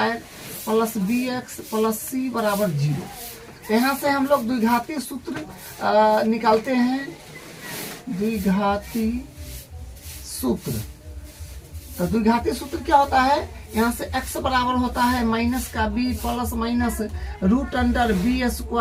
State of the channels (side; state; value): both; identical; correlation 1.00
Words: plus bx plus c बराबर 0। यहाँ से हम लोग द्विघाती सूत्र निकालते हैं। द्विघाती सूत्र, तो द्विघाती सूत्र क्या होता है, यहाँ से x बराबर होता है माइनस का b plus minus root under